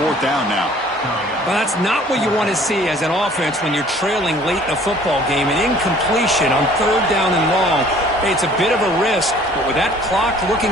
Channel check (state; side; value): normal; both; correlation 0.53